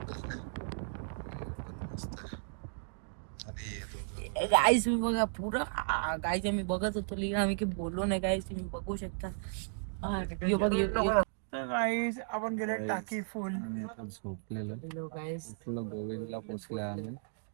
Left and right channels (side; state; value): left; silent; digital silence